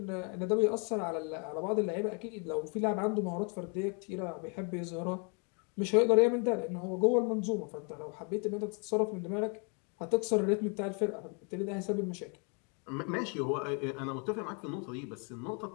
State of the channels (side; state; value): right; quieter; 36.7 dB